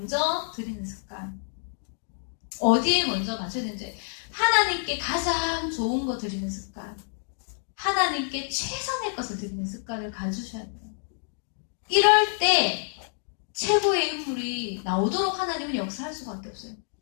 드리는 습관. 어디에 먼저 맞춰야 되는지. 하나님께 가장 좋은 거 드리는 습관. 하나님께 최선의 것을 드리는 습관을 가지셔야 돼요. 이럴 때 최고의 인물이 나오도록 하나님은 역사할 수밖에 없어요.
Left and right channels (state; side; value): silent; right; 60 dB below the other